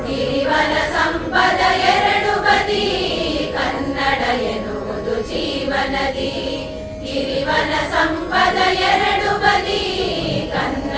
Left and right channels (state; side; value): identical; both; correlation 1.00